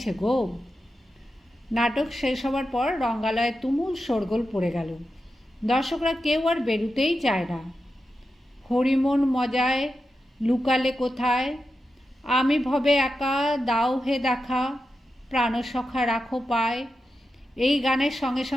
গো। নাটক শেষ হবার পর রঙ্গালয়ে তুমুল শোরগোল পড়ে গেল। দর্শকরা কেউ আর বেরুতেই চায় না। হরিমন মজায় লুকালে কোথায়, আমি ভবে একা দাও হে দেখা, প্রাণসখা রাখো পায়, এই গানের সঙ্গে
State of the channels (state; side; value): normal; both; correlation 0.89